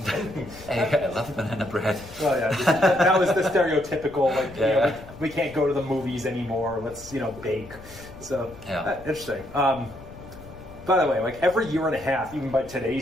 Hey, I love banana bread. Well, yeah, that was the stereotypical, like, you know, we can't go to the movies anymore, let's, bake. So, interesting. By the way, like, every year and a half, even by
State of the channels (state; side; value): noise; left; rumble, 18 dB below the sound